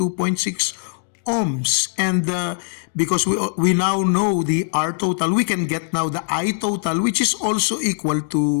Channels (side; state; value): right; silent; digital silence